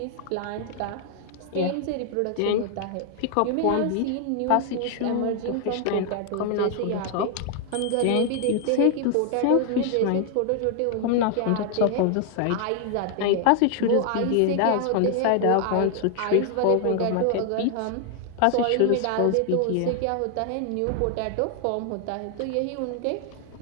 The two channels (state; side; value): different; both; correlation 0.00